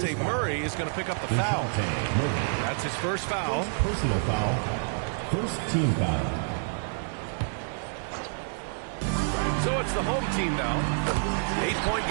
Murray is going to pick up the foul. That's his first foul. Personal foul. First team foul. So it's the home team now. 8-point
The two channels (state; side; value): silent; left; 59 dB below the other